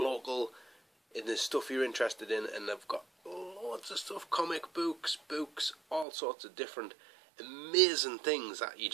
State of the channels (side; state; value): left; drops out; at 6.1 s